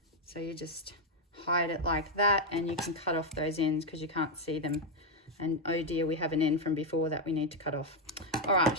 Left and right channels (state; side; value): normal; both; correlation 0.03